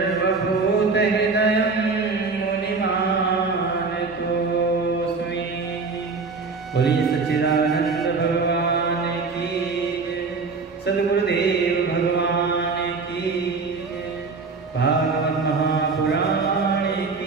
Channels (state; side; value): quieter; left; 4.4 dB